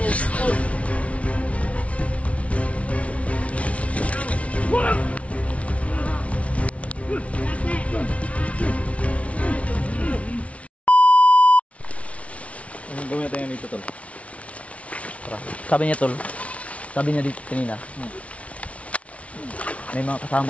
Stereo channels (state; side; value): late; right; 0.064 ms